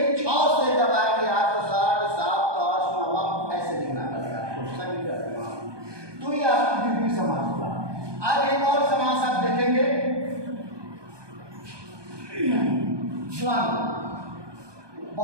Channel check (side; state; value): left; late; 1.2 ms